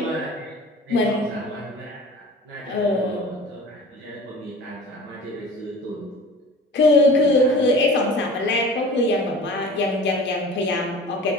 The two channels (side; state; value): both; normal; correlation 0.40